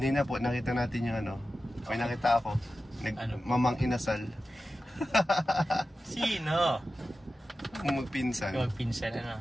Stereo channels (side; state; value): both; normal; correlation 0.93